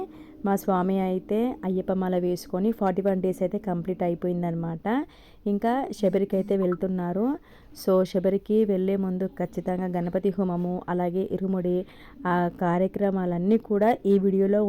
మా స్వామి అయితే అయ్యప్ప మాల వేసుకొని 41 డేస్ అయితే కంప్లీట్ అయిపోయిందనమాట. ఇంకా శబరికి అయితే వెళ్తున్నారు. సో శబరికి వెళ్ళే ముందు ఖచ్చితంగా గణపతి హోమము, అలాగే ఇరుముడి ఆ కార్యక్రమాలన్నీ కూడా ఈ వీడియోలో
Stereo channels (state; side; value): identical; both; correlation 1.00